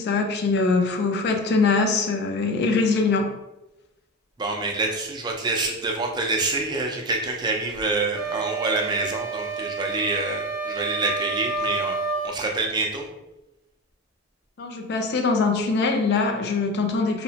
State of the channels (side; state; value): both; normal; correlation 0.23